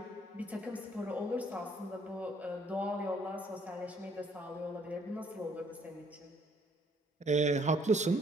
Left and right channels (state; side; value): normal; both; correlation 0.63